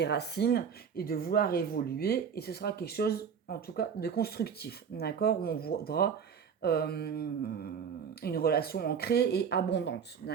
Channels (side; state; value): left; quieter; 7.0 dB